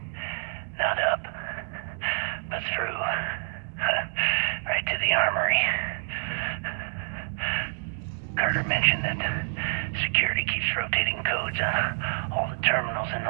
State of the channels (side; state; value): left; silent; digital silence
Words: Not up, but through. Right to the armory. Carter mentioned that security keeps rotating codes on all the terminals in